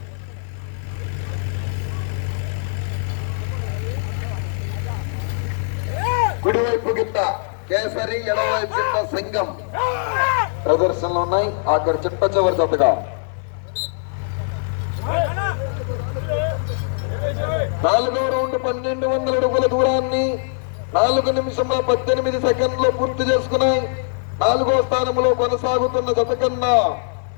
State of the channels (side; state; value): right; silent; 65 dB below the other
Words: కుడివైపు గిట్ట కేసరి, ఎడవైపు గిట్ట సింగం ప్రదర్శనలో ఉన్నాయి. అక్కడ చిట్ట చివరి జతగా 4వ రౌండ్ 1200 అడుగుల దూరాన్ని 4 నిమిషముల 18 సెకండ్లు పూర్తి చేసుకున్నాయి. 4వ స్థానంలో కొనసాగుతున్న జత కన్నా